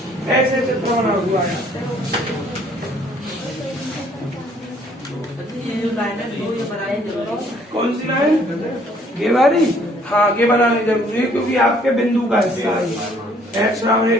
ऐसे चित्र बना हुआ है। कौन सी लाइन, ये वाली? हाँ ये बनानी जरूरी है, क्योंकि आपके बिंदु का हिस्सा है। x बराबर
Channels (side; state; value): both; normal; correlation 0.61